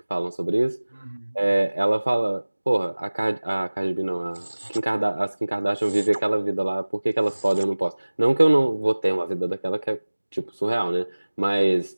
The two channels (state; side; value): inverted; both; correlation -1.00